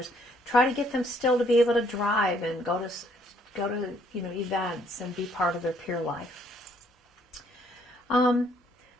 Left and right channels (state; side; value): normal; both; correlation 0.66